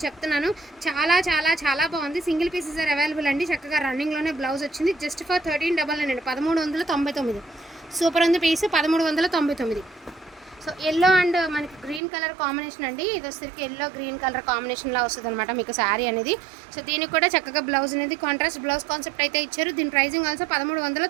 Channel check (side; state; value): left; drops out; at 12.0 s